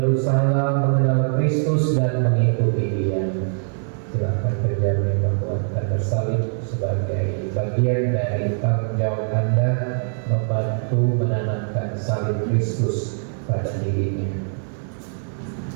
mengenal Kristus dan mengikuti Dia. Silakan penjamin membuat tanda salib sebagai bagian dari tanggung jawab Anda membantu menanamkan salib Kristus pada dirinya.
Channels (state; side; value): silent; left; digital silence